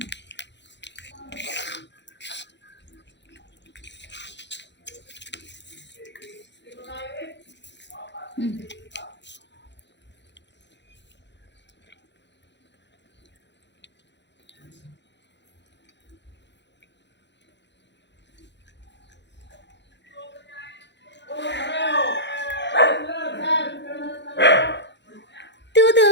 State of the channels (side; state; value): right; late; 0.52 ms